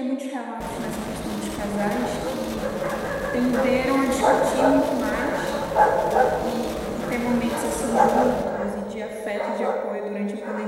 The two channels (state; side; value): identical; both; correlation 1.00